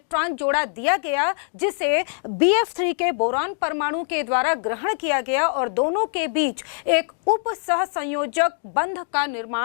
जोड़ा दिया गया जिसे BF3 के बोरॉन परमाणु के द्वारा ग्रहण किया गया, और दोनों के बीच एक उप सहसंयोजक बंध का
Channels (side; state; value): right; silent; digital silence